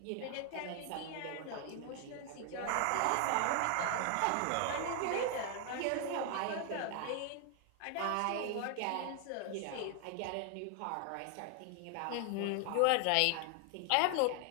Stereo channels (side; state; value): both; different; correlation 0.00